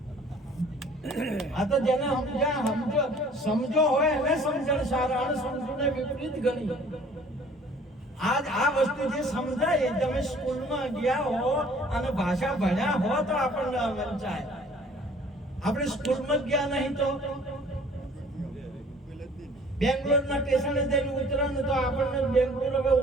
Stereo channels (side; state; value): both; normal; correlation 0.53